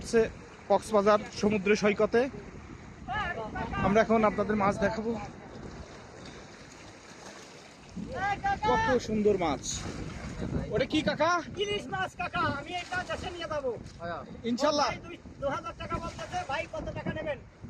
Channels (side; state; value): both; identical; correlation 1.00